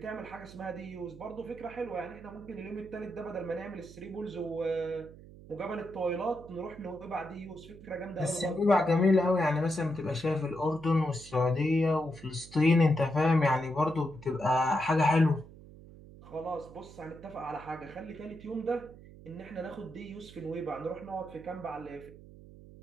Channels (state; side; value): noise; right; hum, 18 dB below the sound